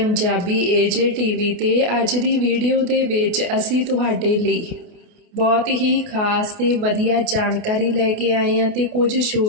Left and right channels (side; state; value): left; late; 28 ms